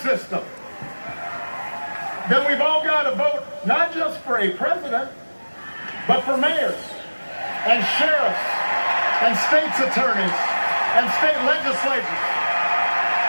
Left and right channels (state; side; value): inverted; both; correlation -1.00